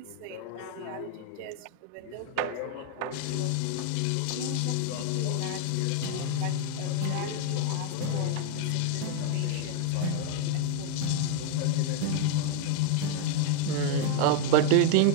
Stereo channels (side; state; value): both; different; correlation 0.01